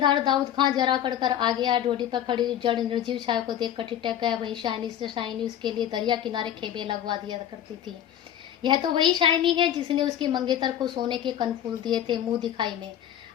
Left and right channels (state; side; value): quieter; right; 10.6 dB